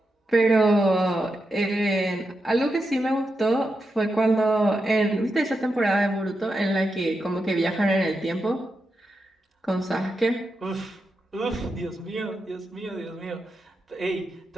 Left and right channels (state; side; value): normal; both; correlation 0.87